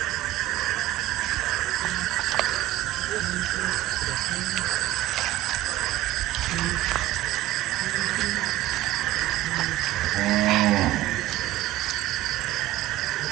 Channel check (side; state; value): left; quieter; 15.6 dB